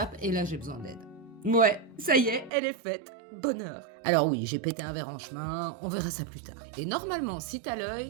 et là j'ai besoin d'aide. Ouais, ça y est, elle est faite. Bonheur. Alors oui, j'ai pété un verre en chemin, on verra ça plus tard. Et normalement, si t'as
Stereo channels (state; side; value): drops out; left; at 2.5 s